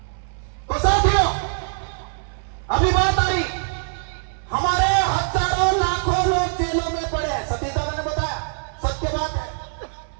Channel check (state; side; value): silent; left; 64 dB below the other